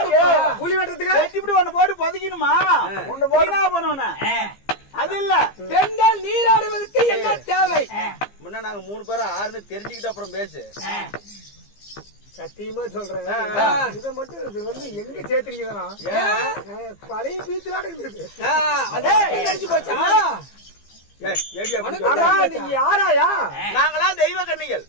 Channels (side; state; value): right; late; 15 ms